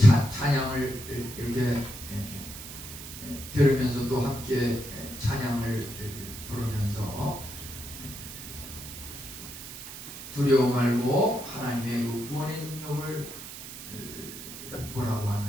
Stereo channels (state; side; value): noise; right; hiss, 12 dB below the sound